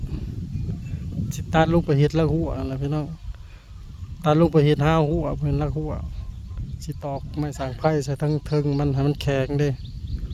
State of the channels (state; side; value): identical; both; correlation 1.00